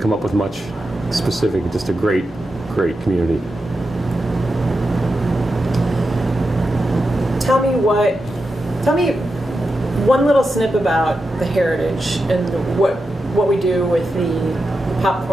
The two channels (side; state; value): both; normal; correlation 0.89